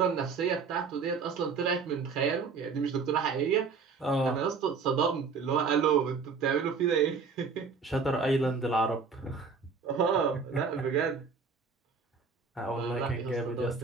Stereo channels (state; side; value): quieter; left; 5.2 dB